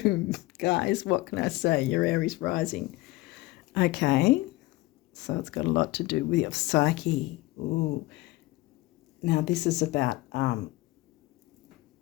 guys, what can I say? You're Aries rising. Okay, so it's got a lot to do with your psyche. Ooh. Now, this is about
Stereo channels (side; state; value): right; quieter; 19.9 dB